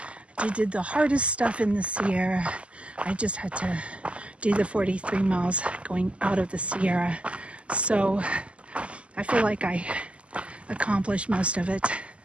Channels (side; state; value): left; late; 0.057 ms